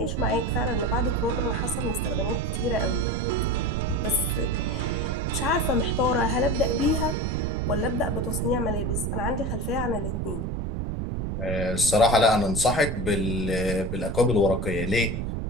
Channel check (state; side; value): noise; right; rumble, 2 dB below the sound